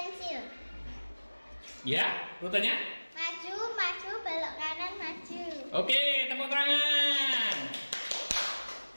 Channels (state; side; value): inverted; both; correlation -1.00